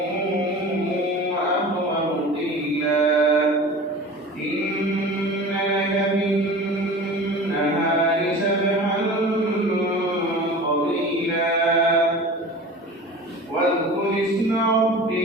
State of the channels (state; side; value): normal; both; correlation 0.37